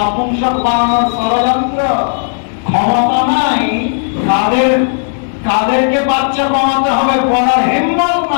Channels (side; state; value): right; silent; 72 dB below the other